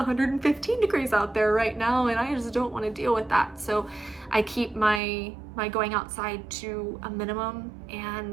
degrees out there right now, and I just don't want to deal with that. So I keep my going outside to a minimum,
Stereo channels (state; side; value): drops out; left; at 5.0 s